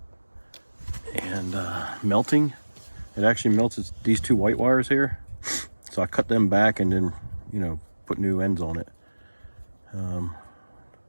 and melting. It actually melted these two white wires here, so I cut them back and then, you know, put new ends on it. The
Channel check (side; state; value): both; inverted; correlation -1.00